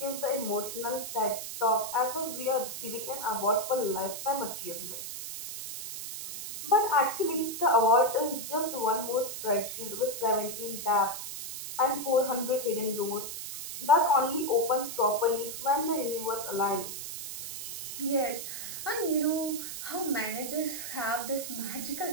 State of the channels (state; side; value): noise; right; hiss, 7 dB below the sound